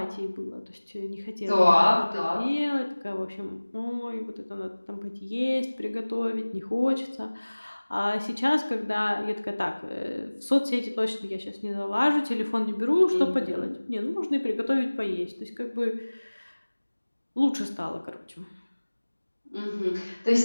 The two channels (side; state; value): both; inverted; correlation -1.00